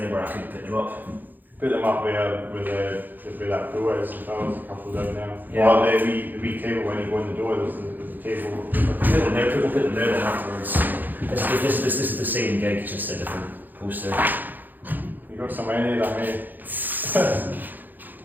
anywhere I could put them up? Put them up where that door is. If I was a couple down there. Yeah. Or the wee table when you go in the door. There's a table. We'll put them there then afterwards. This is the same gig, just a different poster. You got so many of them, eh?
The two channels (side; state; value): left; late; 0.086 ms